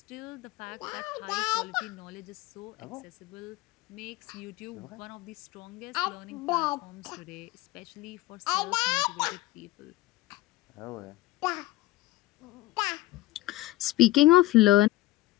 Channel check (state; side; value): quieter; right; 17.6 dB